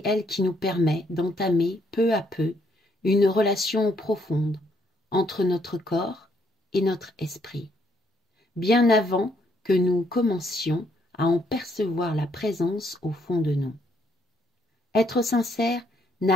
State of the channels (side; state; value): both; normal; correlation 0.71